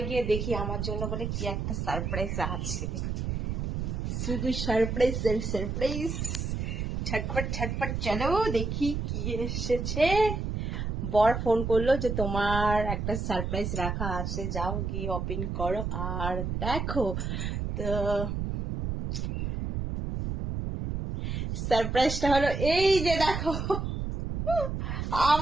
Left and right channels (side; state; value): right; noise; rumble, 2 dB below the sound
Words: গিয়ে দেখি আমার জন্য বলে কি একটা সারপ্রাইজ আছে। শুধু সারপ্রাইজ সারপ্রাইজ, ছটপট ছটপট। চলো দেখি কি এসেছে। বর ফোন করলো যে তোমার একটা সারপ্রাইজ রাখা আছে, যাও গিয়ে ওপেন করো আর দেখো। তো সারপ্রাইজটা হলো এই যে দেখো।